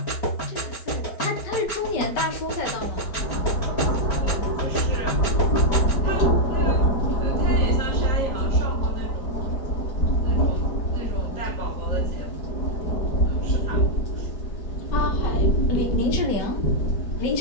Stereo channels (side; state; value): right; late; 4.4 ms